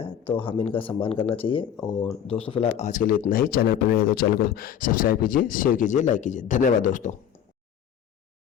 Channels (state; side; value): quieter; right; 9.1 dB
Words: है, तो हम इनका सम्मान करना चाहिए। और दोस्तों फिलहाल आज के लिए इतना ही। चैनल पर नए तो चैनल को सब्सक्राइब कीजिए, शेयर कीजिए, लाइक कीजिए। धन्यवाद दोस्तों।